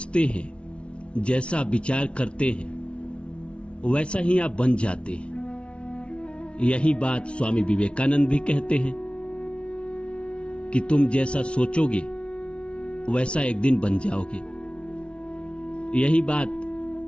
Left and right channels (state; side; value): late; right; 0.059 ms